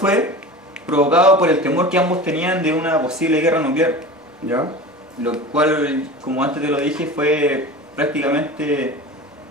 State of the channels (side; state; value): both; normal; correlation 0.33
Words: provocado por el temor que ambos tenían de una posible guerra nuclear. ¿Ya? Lo cual, como antes te lo dije, fue prácticamente